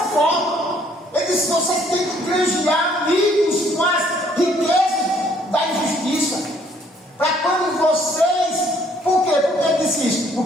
Ele diz: vocês têm que granjear amigos com as riquezas da injustiça. Para quando vocês. Por quê? Por que ele disse isso?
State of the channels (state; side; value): normal; both; correlation 0.63